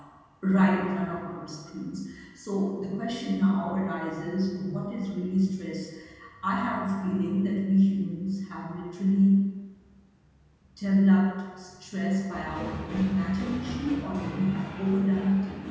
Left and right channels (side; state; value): both; identical; correlation 1.00